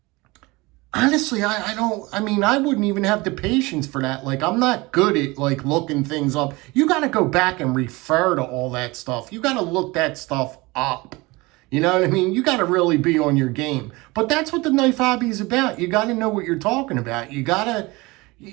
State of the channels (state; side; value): quieter; left; 23.1 dB